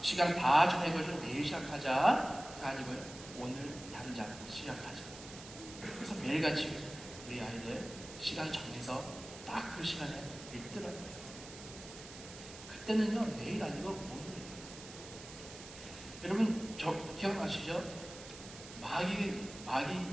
다 정해가지고 내일 시작하자 아니고요, 오늘 당장 시작하자. 그래서 매일같이 우리 아이들 시간 정해서 딱 그 시간에 읽더라고요. 그때는요, 내일 아니고 오늘이에요. 여러분, 기억나시죠? 마귀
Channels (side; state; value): right; noise; hiss, 14 dB below the sound